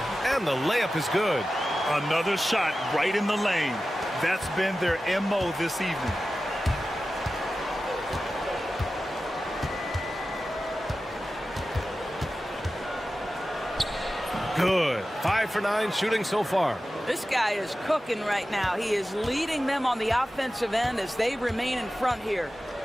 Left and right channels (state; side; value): normal; both; correlation 0.94